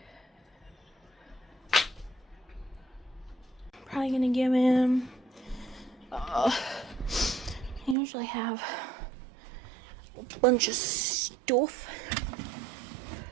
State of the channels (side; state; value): left; drops out; at 8.0 s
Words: Probably gonna give him I usually have a bunch of stuff.